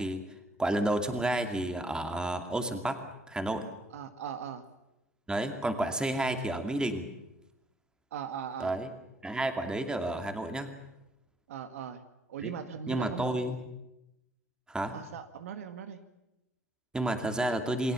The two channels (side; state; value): both; normal; correlation 0.70